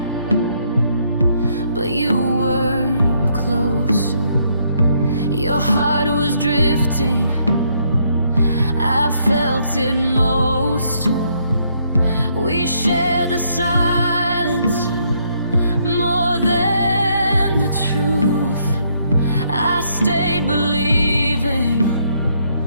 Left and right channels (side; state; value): both; inverted; correlation -0.71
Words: but you weren't close. Your heart was drifting, I felt it most. We shared the silence more than the truth. I stayed believing,